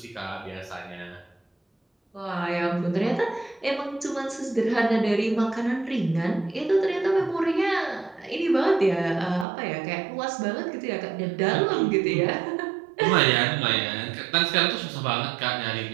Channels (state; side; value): drops out; left; at 9.5 s